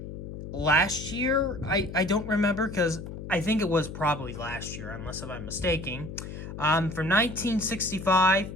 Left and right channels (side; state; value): left; noise; hum, 10 dB below the sound